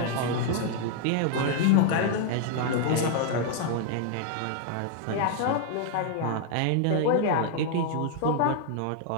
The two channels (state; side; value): different; both; correlation 0.00